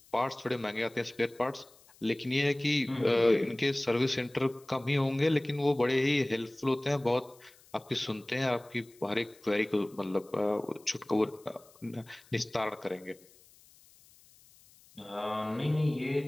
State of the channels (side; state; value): left; noise; hiss, 27 dB below the sound